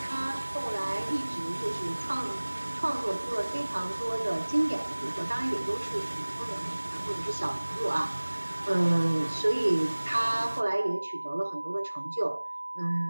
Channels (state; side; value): inverted; both; correlation -1.00